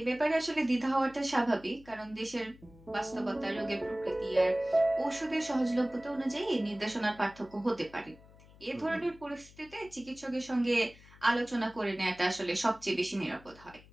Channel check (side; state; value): left; noise; hum, 23 dB below the sound